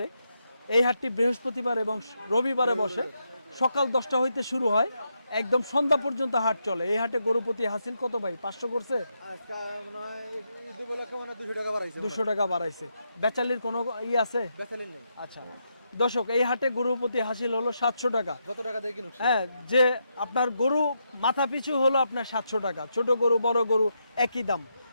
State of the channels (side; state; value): both; inverted; correlation -0.82